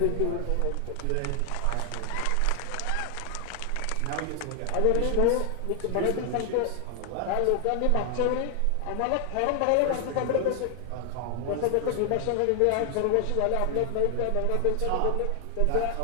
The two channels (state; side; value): different; both; correlation 0.00